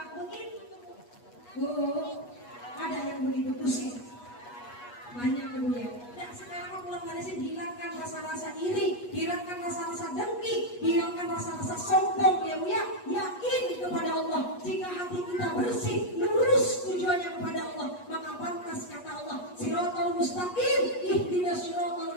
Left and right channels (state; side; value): late; right; 8.3 ms